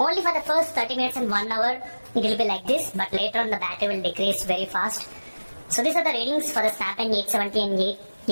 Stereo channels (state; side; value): inverted; both; correlation -1.00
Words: for the first 30 minutes and 1 hour, it will be like this, but later on the battery will decrease very fast. So these are the ratings for the Snapdragon 870 and